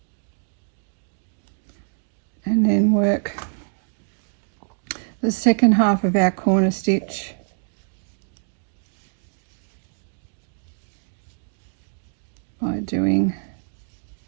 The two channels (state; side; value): silent; left; 62 dB below the other